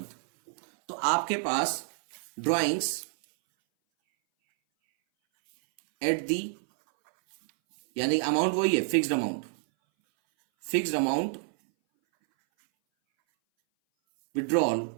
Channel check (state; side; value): silent; left; 59 dB below the other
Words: तो आपके पास ड्राइंग्स एट दी, यानी अमाउंट वही है, fixed amount withdrawal